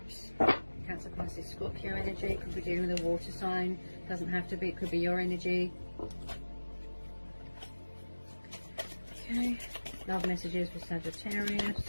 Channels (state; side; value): inverted; both; correlation -1.00